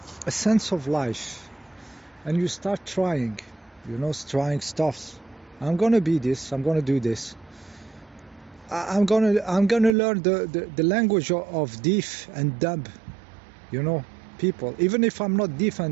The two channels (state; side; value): drops out; left; at 10.0 s